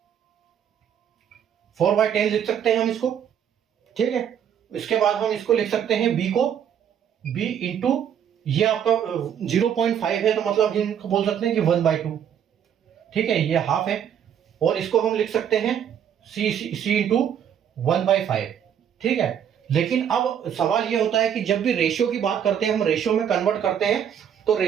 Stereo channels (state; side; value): quieter; left; 8.9 dB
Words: लिख सकते हैं हम इसको। ठीक है, इसके बाद हम इसको लिख सकते हैं b को b इंटू ये आपका 0.5 है, तो मतलब इनको बोल सकते हैं कि 1/2। ठीक है, ये हाफ है, और इसको हम लिख सकते हैं c इंटू 1/5। ठीक है, लेकिन अब सवाल ये होता है कि जब भी रेशियो की बात करते हैं, हम रेशियो में कन्वर्ट करते हैं तो